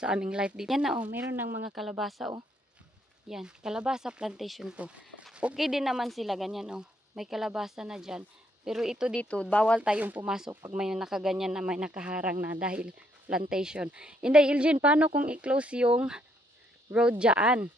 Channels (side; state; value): both; normal; correlation 0.72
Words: aming life dito. Yan na oh, meron ng mga kalabasa oh. Yan, kalabasa plantation to. Okay din naman sila, ganyan oh. May kalabasa na dyan. Pero ito dito, bawal tayong pumasok pag may nakaganyan na may nakaharang na dahil plantation. Hindi, Ilgin, paano kung i-close yung road dyan?